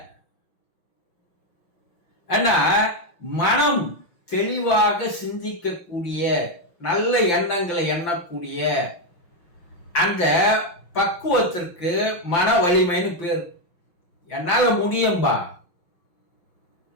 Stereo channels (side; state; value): right; late; 5.8 ms